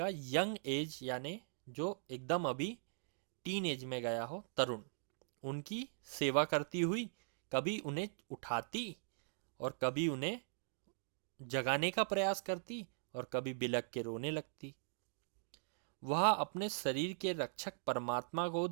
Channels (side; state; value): left; silent; digital silence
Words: यंग एज, यानी जो एकदम अभी टीन एज में गया हो, तरुण, उनकी सेवा करती हुई कभी उन्हें उठाती और कभी उन्हें जगाने का प्रयास करती और कभी बिलख के रोने लगती। वह अपने शरीर के रक्षक परमात्मा को